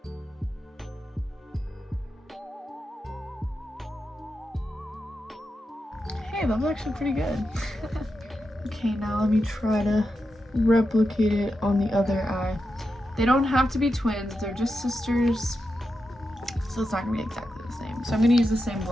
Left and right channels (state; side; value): normal; both; correlation 0.88